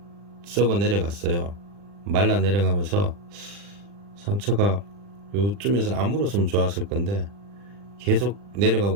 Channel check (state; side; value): late; left; 40 ms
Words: 썩어 내려갔어요. 말라 내려가면서 상처가 요쯤에서 안 물었으면 좋았을 건데 계속